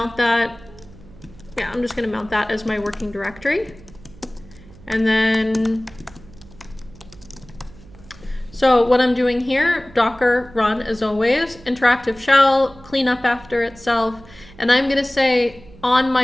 that. Yeah, I'm just going to mount that as my working directory. And then, so what I'm doing here, docker run as always, interactive shell, clean up after itself, and I'm going to say on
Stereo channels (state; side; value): noise; right; hum, 21 dB below the sound